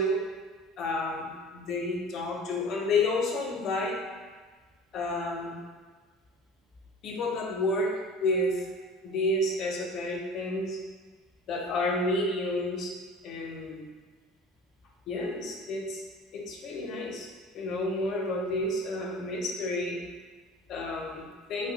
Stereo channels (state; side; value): normal; both; correlation 0.40